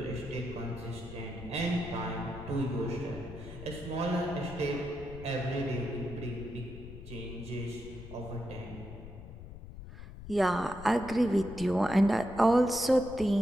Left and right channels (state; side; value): noise; left; rumble, 13 dB below the sound